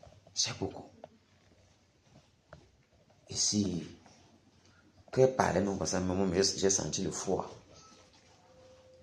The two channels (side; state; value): both; identical; correlation 1.00